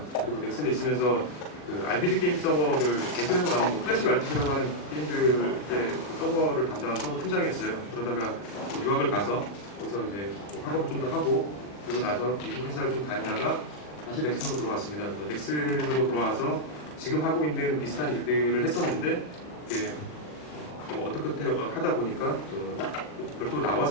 그리고 넥슨에 있으면서 RPG 게임 서버를 넥슨에서 나온 클래식 RPG라고 하는 게임들의 서버를 담당한 서버 팀장이었어요. 그러다가 유학을 가서 거기서 이제 학업을 좀 더 하고 그리고 나서 미국 회사를 좀 다니다가 다시 넥슨으로 들어왔습니다. 넥슨으로 들어와서 지금 하고 있는 비슷한 일들을 했었는데 어떻게 하다 보니까 별도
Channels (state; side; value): late; right; 40 ms